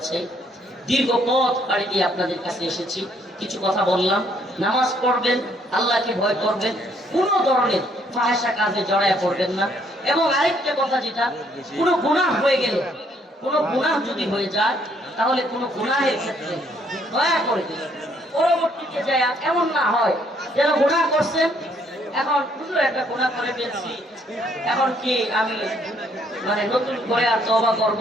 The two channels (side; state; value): both; normal; correlation 0.67